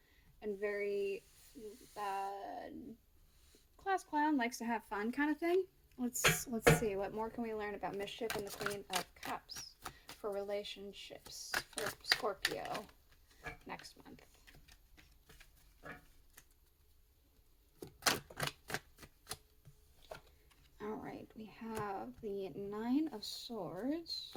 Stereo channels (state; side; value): identical; both; correlation 1.00